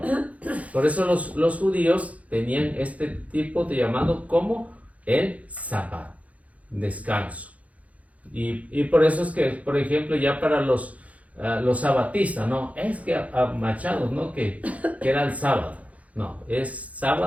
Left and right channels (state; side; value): late; left; 0.068 ms